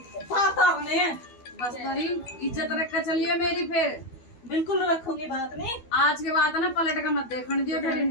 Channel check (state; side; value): late; right; 12 ms